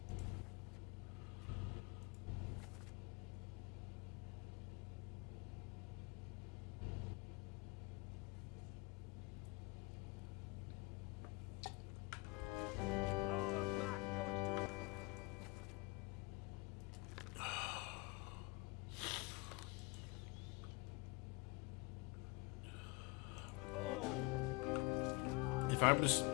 If I was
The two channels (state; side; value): quieter; right; 26.2 dB